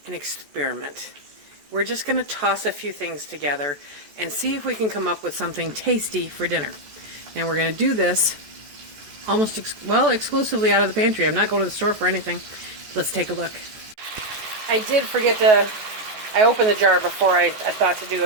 an experiment. We're just going to toss a few things together and see if we can come up with something tasty for dinner. And we're going to do this almost exclusively out of the pantry. I'm not going to the store for anything. Let's take a look. I did forget I opened the jar before I thought to do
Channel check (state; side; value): late; left; 14 ms